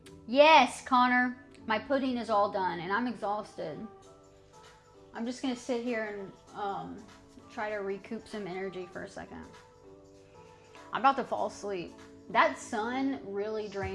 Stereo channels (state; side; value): identical; both; correlation 1.00